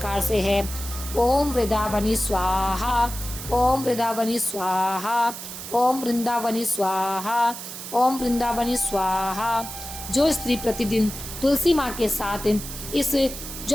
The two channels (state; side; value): noise; right; hiss, 10 dB below the sound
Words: से है, ओम वृंदावनी स्वाहा, ओम वृंदावनी स्वाहा, ओम वृंदावनी स्वाहा, ओम वृंदावनी स्वाहा। जो स्त्री प्रतिदिन तुलसी माँ के साथ इस